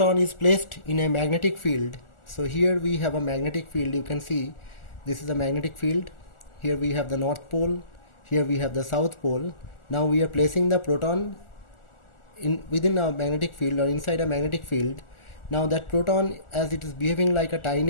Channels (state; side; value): late; right; 1.4 ms